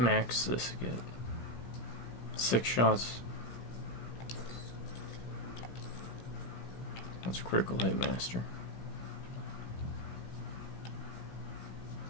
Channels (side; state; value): right; late; 17 ms